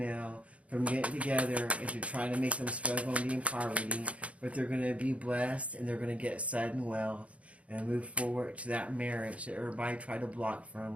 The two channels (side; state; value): left; late; 0.064 ms